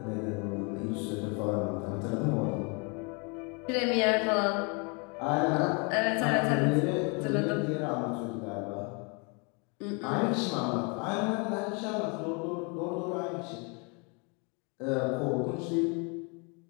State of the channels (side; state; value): right; quieter; 33.3 dB